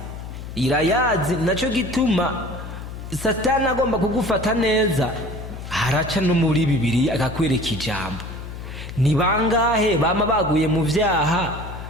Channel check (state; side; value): noise; left; hum, 10 dB below the sound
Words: irayazi, naco gituma Satani agomba kugufata neza haraca no muri Bibiliya akakwereka ijambo. Ni bangahe bama baguye mu vyaha